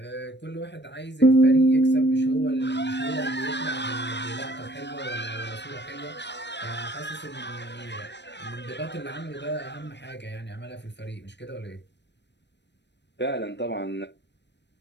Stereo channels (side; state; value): right; late; 0.51 ms